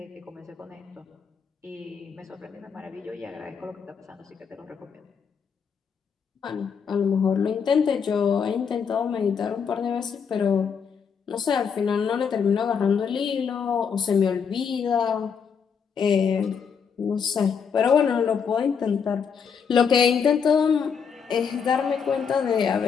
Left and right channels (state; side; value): quieter; right; 6.6 dB